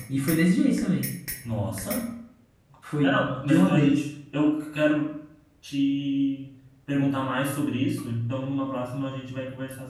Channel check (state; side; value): identical; both; correlation 1.00